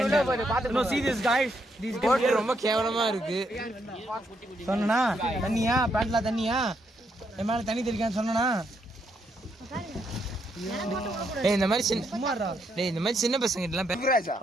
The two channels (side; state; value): both; normal; correlation 0.77